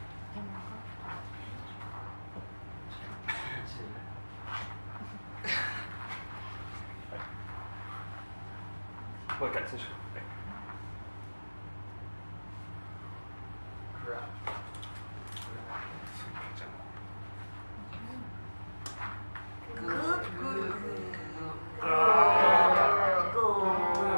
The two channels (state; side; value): inverted; both; correlation -1.00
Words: Look at this.